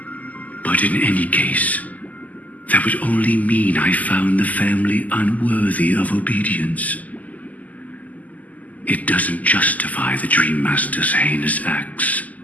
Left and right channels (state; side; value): late; right; 0.078 ms